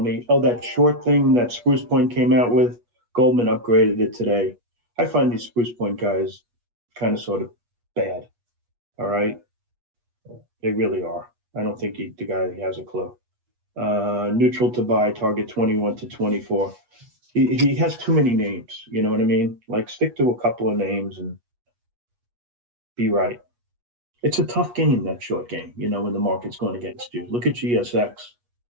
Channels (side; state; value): left; late; 8.3 ms